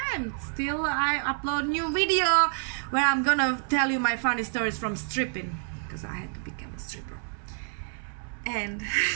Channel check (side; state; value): left; silent; 59 dB below the other